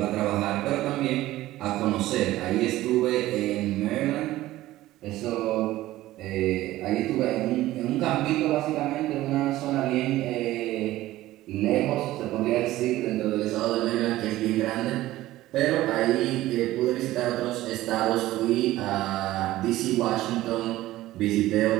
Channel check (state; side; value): quieter; left; 16.0 dB